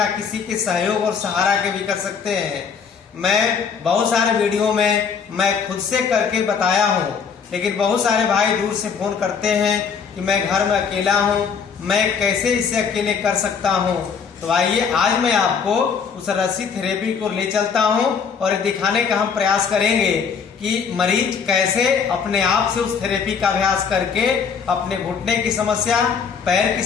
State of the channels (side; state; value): right; quieter; 6.3 dB